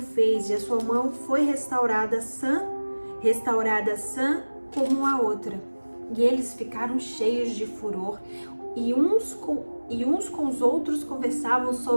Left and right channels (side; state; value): both; inverted; correlation -1.00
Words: fez, e a sua mão foi restaurada sã como a outra. E eles ficaram cheios de furor, e uns com os outros conversavam